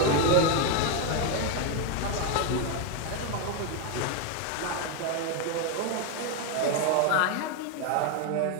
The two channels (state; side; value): different; both; correlation 0.02